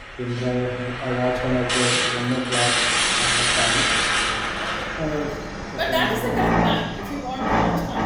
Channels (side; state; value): both; identical; correlation 1.00